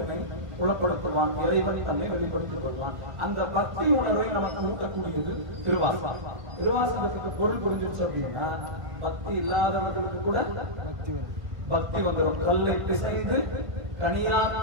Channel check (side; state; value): left; late; 1.7 ms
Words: புலப்படுத்துவான், இறைவன் தன்னை வெளிப்படுத்திக் கொள்வான். அந்த பக்தி உணர்வை நமக்கு ஊட்டக்கூடியது திருவாசகம். திருவாசகத்துக்கு பொருள் புரிஞ்சிருச்சு அப்படின்னா பக்தி இல்லாதவர்களுக்கு கூட பக்தி வந்துடும். கல்லை பிசைந்து